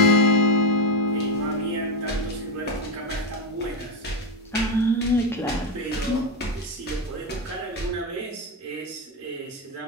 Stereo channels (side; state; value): both; normal; correlation 0.08